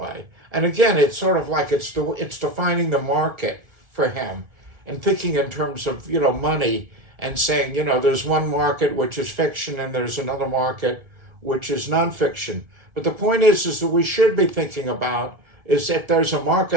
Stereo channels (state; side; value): late; left; 1.7 ms